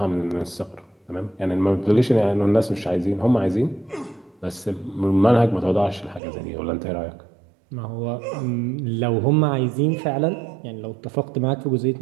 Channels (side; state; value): left; drops out; at 6.2 s